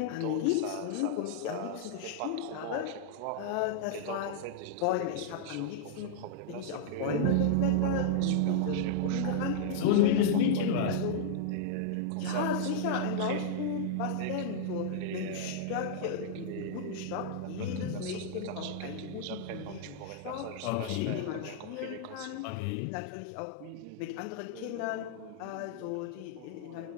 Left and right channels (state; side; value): different; both; correlation -0.01